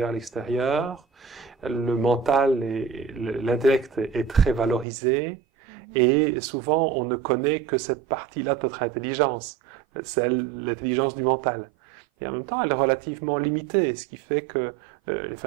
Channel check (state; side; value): drops out; left; at 4.9 s